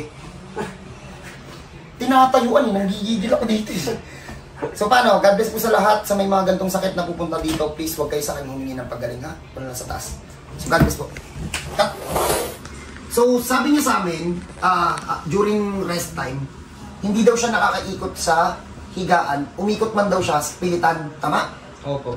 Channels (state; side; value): identical; both; correlation 1.00